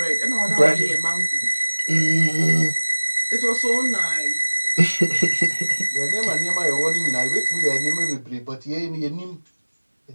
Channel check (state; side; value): inverted; both; correlation -1.00